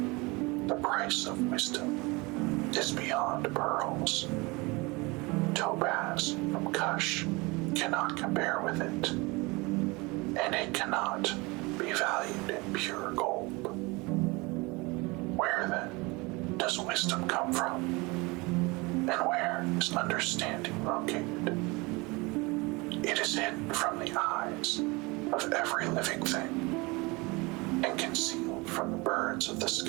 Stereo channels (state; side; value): quieter; left; 25.3 dB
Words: The price of wisdom is beyond pearls. topaz from Cush cannot compare with it, and it cannot be valued in pure gold. Where then does wisdom come from? And where is understanding located? It is hidden from the eyes of every living thing, and concealed from the birds of the